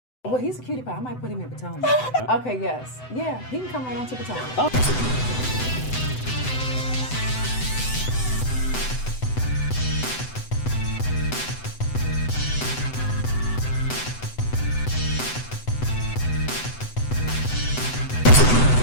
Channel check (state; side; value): late; right; 7.9 ms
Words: Well, he's a cutie pie. I might put him in Potomac. Okay, yes. Yeah, he can come right on to Potomac.